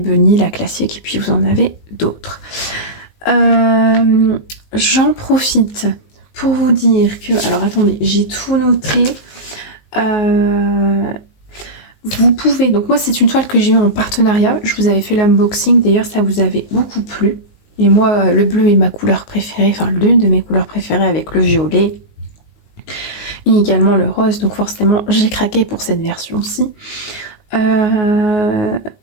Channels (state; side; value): late; right; 19 ms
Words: la classique, et puis vous en avez d'autres. J'en profite pour vous dire que... Alors attendez, j'ai tout noté. Vous pouvez, donc moi c'est une toile que j'ai eue en partenariat, je vous avais fait l'unboxing, d'ailleurs ça vous avait beaucoup plu, et moi le bleu est ma couleur préférée, enfin l'une de mes couleurs préférées avec le violet et également le rose, donc forcément j'ai craqué pour cette version-ci.